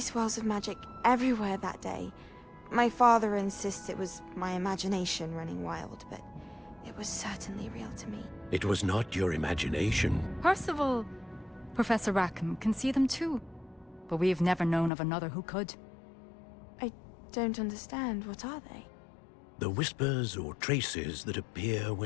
of magic everywhere that day. My father insists it was my imagination running wild, but it was certainly real to me. It was not your imagination. Percival, Professor Rackham can see them too. But we've never known of another who could. I don't understand. What are they? The whispers or traces that appear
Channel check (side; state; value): right; drops out; at 14.9 s